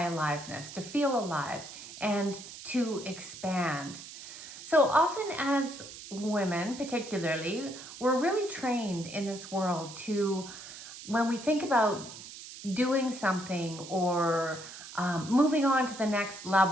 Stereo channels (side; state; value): right; noise; hiss, 13 dB below the sound